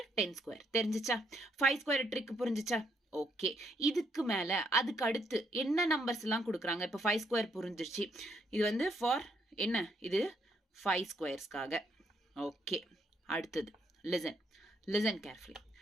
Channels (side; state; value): both; normal; correlation 0.73